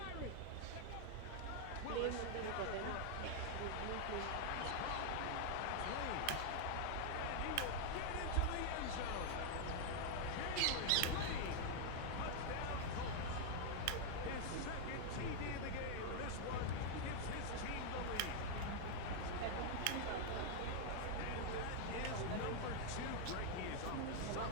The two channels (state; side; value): different; both; correlation 0.00